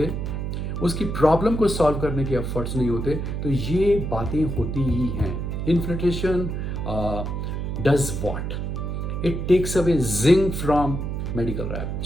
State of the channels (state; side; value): noise; right; hum, 3 dB below the sound